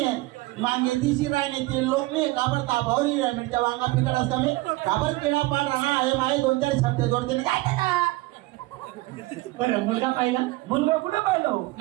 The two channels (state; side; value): quieter; left; 20.6 dB